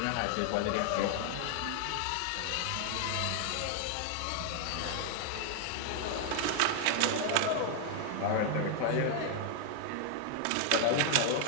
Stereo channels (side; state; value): both; different; correlation 0.00